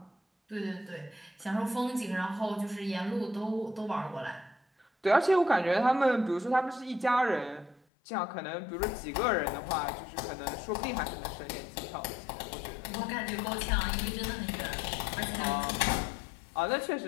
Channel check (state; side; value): drops out; right; at 7.8 s